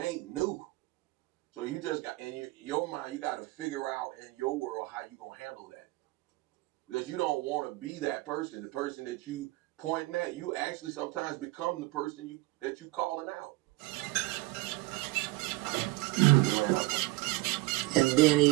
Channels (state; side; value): quieter; left; 21.0 dB